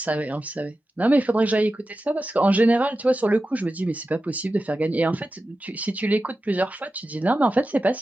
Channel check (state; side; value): normal; both; correlation 0.93